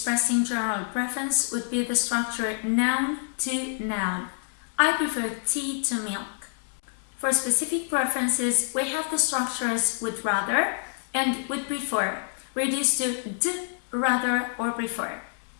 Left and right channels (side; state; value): right; silent; digital silence